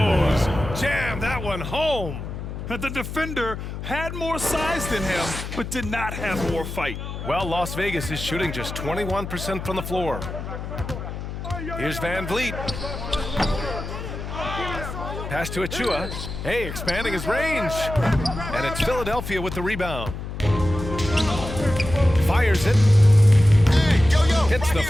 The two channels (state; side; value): noise; left; hum, 8 dB below the sound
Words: Jam that one home. The defender had more size than him, but did not have more fight. Well, Las Vegas is shooting just 21% from the floor. Here's Van Vliet. Pass to Achua. Hey, expanding his range. And it's Philadelphia with the rebound. Fires it. Hits the